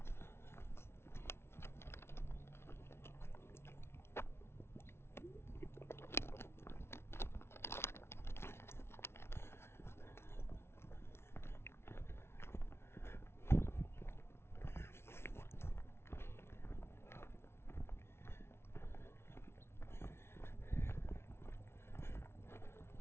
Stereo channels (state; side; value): late; right; 0.12 ms